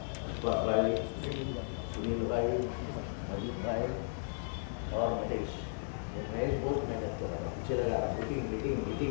अशफाक भाई, सुनील भाई, मजीद भाई और महेश। महेश बहुत मेहनत कर रहा था, पीछे लगा रहा, मीटिंग मीटिंग मीटिंग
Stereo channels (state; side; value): silent; right; digital silence